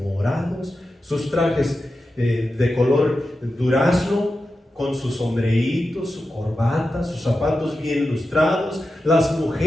sus trajes de color durazno, con sus sombreitos, su corbata, sus zapatos bien lustrados, las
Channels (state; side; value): normal; both; correlation 0.91